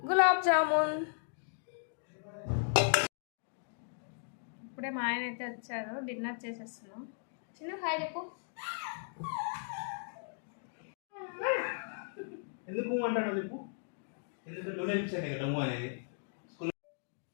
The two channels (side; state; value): right; silent; digital silence